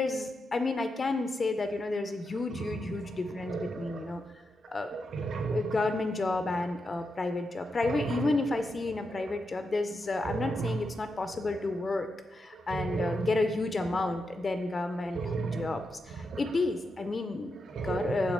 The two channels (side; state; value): both; normal; correlation 0.86